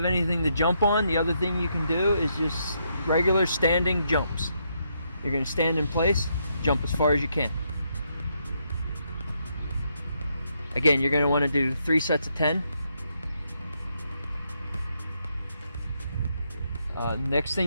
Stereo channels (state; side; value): inverted; both; correlation -0.77